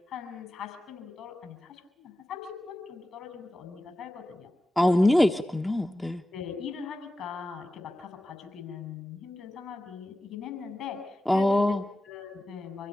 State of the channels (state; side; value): normal; both; correlation 0.93